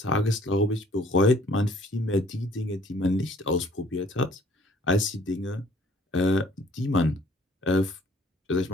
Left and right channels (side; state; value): both; normal; correlation 0.58